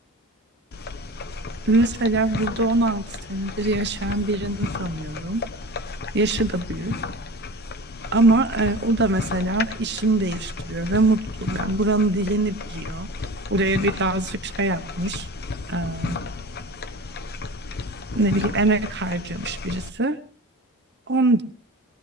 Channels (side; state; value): both; normal; correlation 0.35